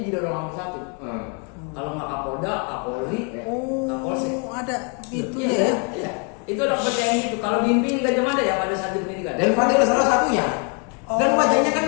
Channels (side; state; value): right; quieter; 37.1 dB